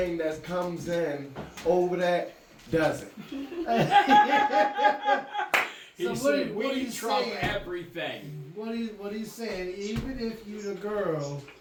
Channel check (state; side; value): identical; both; correlation 1.00